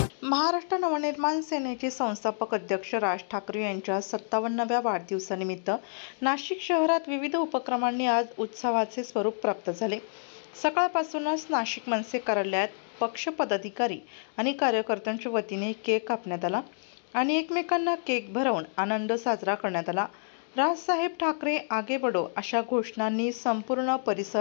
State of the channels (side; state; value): right; silent; digital silence